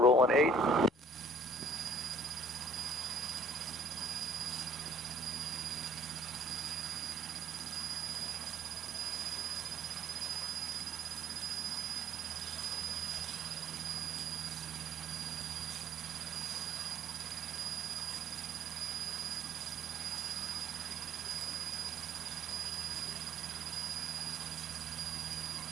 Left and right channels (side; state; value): both; normal; correlation 0.56